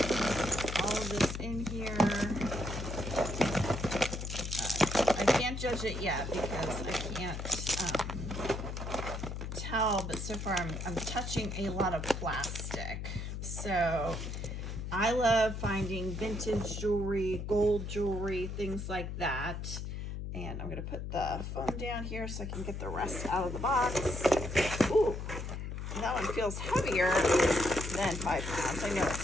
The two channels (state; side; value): noise; left; hum, 5 dB below the sound